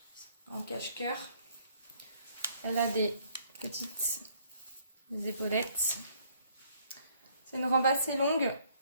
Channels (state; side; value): inverted; both; correlation -0.64